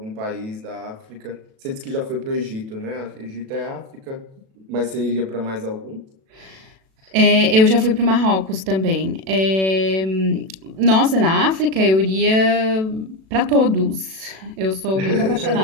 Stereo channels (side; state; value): left; late; 37 ms